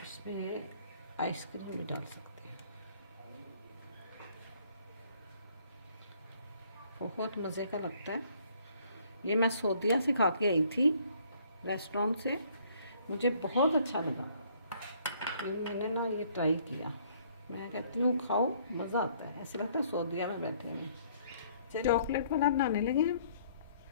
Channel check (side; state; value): both; inverted; correlation -0.62